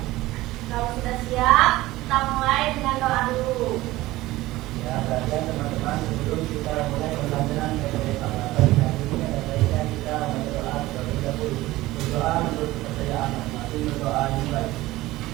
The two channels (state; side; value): quieter; left; 17.8 dB